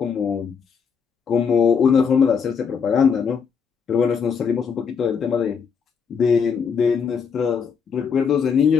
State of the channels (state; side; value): quieter; right; 6.4 dB